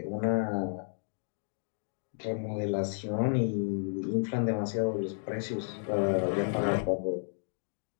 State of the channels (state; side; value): silent; right; 56 dB below the other